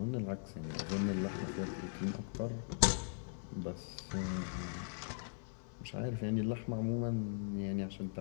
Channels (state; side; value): silent; right; 51 dB below the other